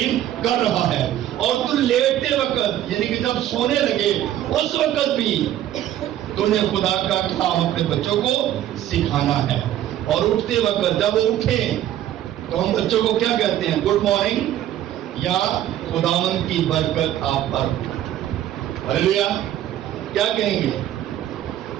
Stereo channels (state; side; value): quieter; left; 12.3 dB